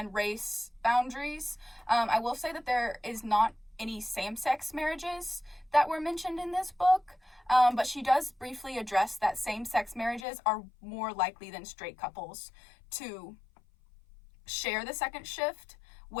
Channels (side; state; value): right; drops out; at 10.2 s